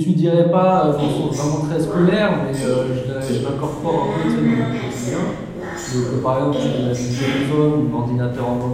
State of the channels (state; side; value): identical; both; correlation 1.00